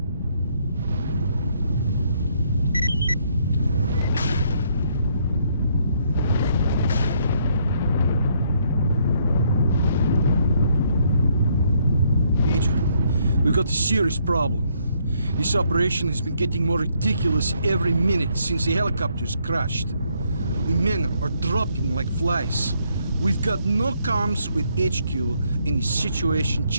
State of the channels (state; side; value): inverted; both; correlation -0.71